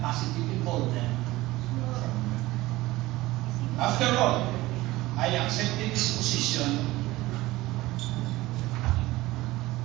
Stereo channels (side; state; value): left; quieter; 18.6 dB